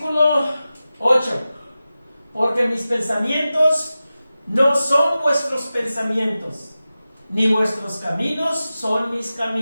8. Porque mis pensamientos no son vuestros pensamientos, ni vuestros caminos son mis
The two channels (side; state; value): both; inverted; correlation -0.95